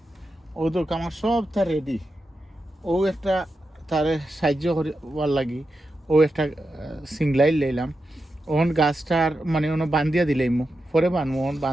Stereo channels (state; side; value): normal; both; correlation 0.89